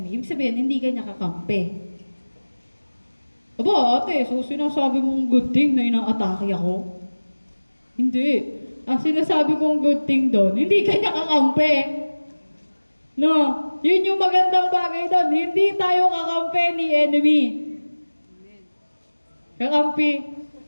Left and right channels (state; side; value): inverted; both; correlation -1.00